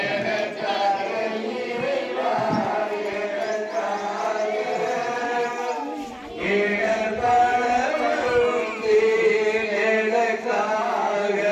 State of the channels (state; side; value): identical; both; correlation 1.00